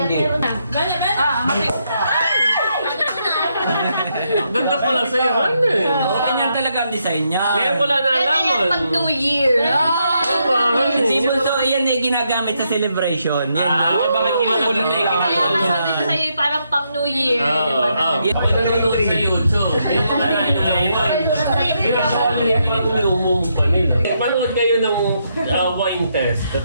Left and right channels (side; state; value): both; inverted; correlation -0.78